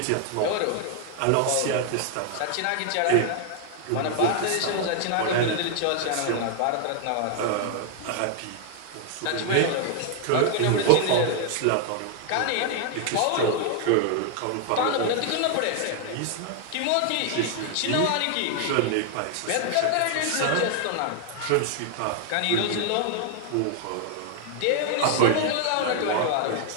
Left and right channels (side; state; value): both; different; correlation 0.00